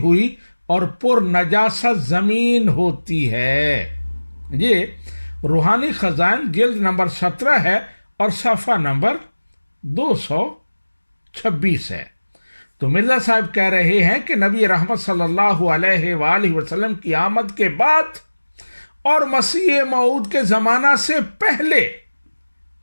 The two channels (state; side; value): inverted; both; correlation -1.00